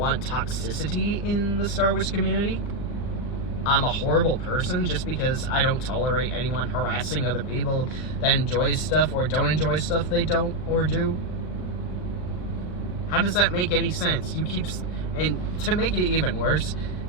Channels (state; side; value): late; right; 39 ms